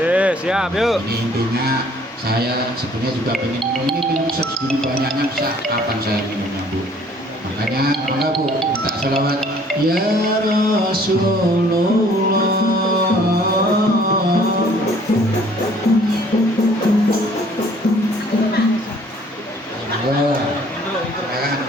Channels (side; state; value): both; normal; correlation 0.57